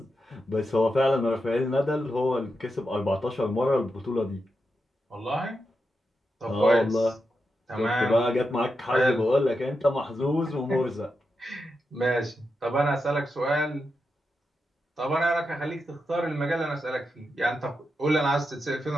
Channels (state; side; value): normal; both; correlation 0.87